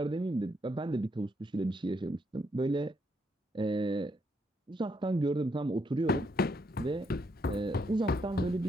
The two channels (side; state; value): both; normal; correlation 0.75